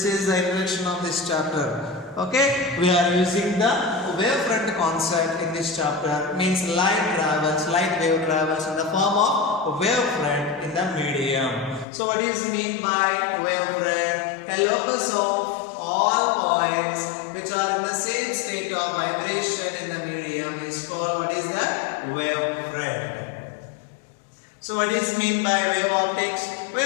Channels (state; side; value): drops out; right; at 11.9 s